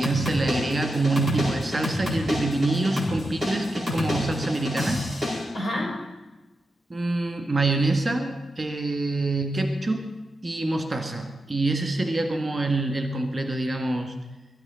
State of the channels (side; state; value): both; normal; correlation 0.87